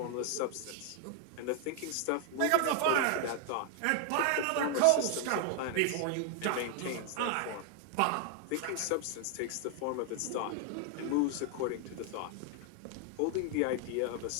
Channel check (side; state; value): both; different; correlation 0.00